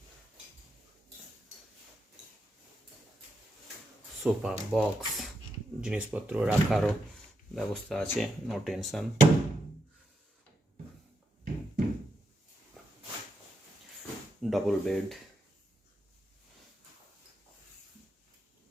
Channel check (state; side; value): normal; both; correlation 0.84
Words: সোফা, বক্স, জিনিসপত্র রাখারও ব্যবস্থা আছে, no tension. Double bed,